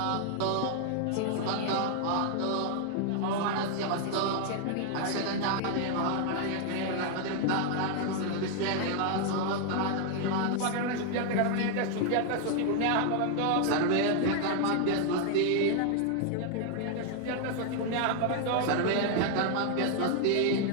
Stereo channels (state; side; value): different; both; correlation 0.00